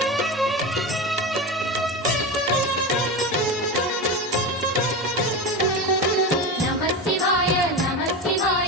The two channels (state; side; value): normal; both; correlation 0.22